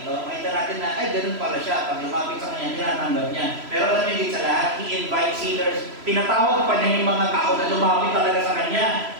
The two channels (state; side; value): late; left; 3.0 ms